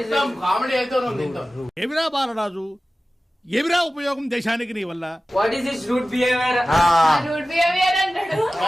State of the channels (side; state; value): both; normal; correlation 0.96